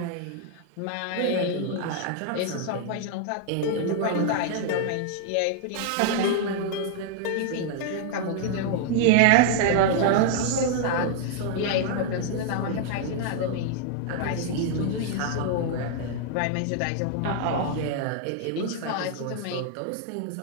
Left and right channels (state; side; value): different; both; correlation 0.00